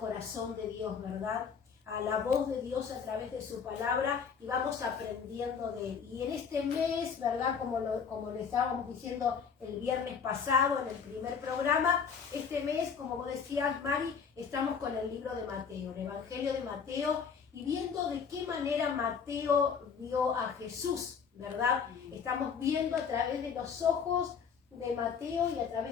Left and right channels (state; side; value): quieter; right; 6.4 dB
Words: de Dios, ¿verdad? A la voz de Dios a través de su palabra y vamos aprendiendo de Él. Y en este mes, ¿verdad? Como lo estábamos diciendo el viernes pasado en el primer programa, este mes, como vos decías, Mari, estamos con el libro de Mateo, el Evangelio de Mateo, y viendo de qué manera Mateo vio a Jesús, ¿verdad? Estamos viendo a través de los ojos de Mateo y a